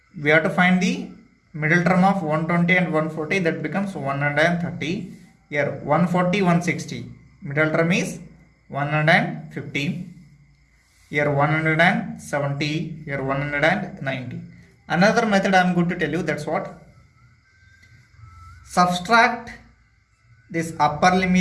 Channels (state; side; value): identical; both; correlation 1.00